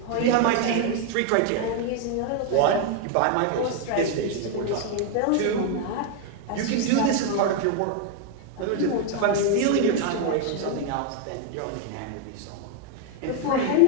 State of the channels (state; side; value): different; both; correlation 0.01